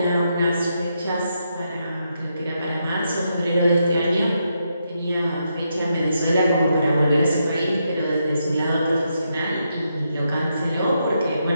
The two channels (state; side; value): inverted; both; correlation -0.81